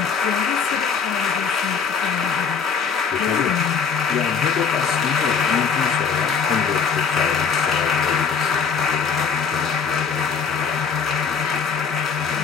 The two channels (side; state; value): right; quieter; 6.1 dB